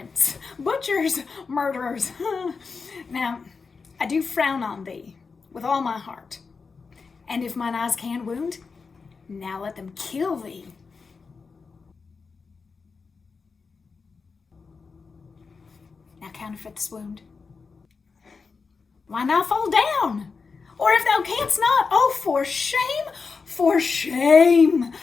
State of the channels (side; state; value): right; quieter; 4.9 dB